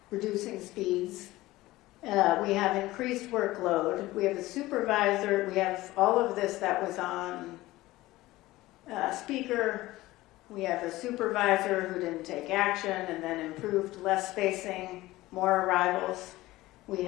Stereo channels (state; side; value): quieter; right; 18.0 dB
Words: reducing speeds. We have increased workload. We have a supervisor. We have all of this that was on speaker. We have a supervisor who didn't take action and then improved less spacing, more arrivals. We